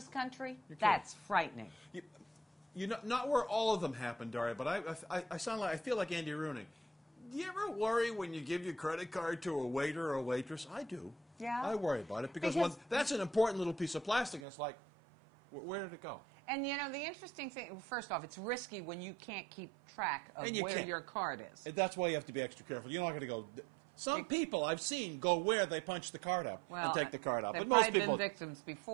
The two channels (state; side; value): drops out; left; at 14.4 s